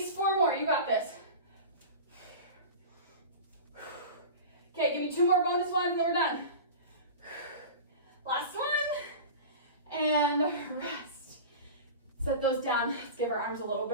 4 more. You got this. Okay, give me 2 more bonus ones and then we're done. Last one. And rest. Set those down. Let's give our arms a little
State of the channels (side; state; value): both; inverted; correlation -0.32